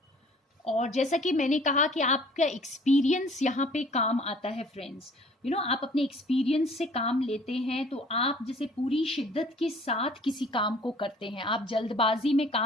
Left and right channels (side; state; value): both; normal; correlation 0.53